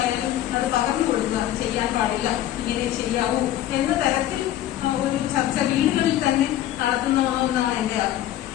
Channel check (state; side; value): quieter; right; 12.9 dB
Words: അത് പകർന്നു കൊടുക്കുക. അത് ചെയ്യാൻ പാടില്ല, ഇങ്ങനെ ചെയ്യാവൂ എന്ന തരത്തിൽ ഒരു ചർച്ച വീടുകളിൽ തന്നെ നടത്തുന്നതെന്നാണ് എന്റെ